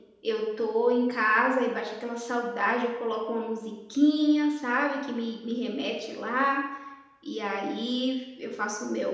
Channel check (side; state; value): both; identical; correlation 1.00